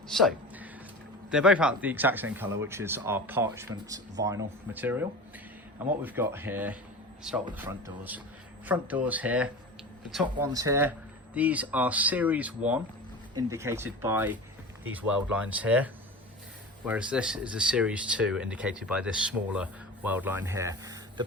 So they're both out the exact same colour, which is our parchment vinyl material. And what we've got here, start with the front doors. Front doors here, the top ones here, these are Series 1, indicated by these weld lines here, whereas this is a Series 2, indicated by this smaller weld line here. The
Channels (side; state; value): both; normal; correlation 0.32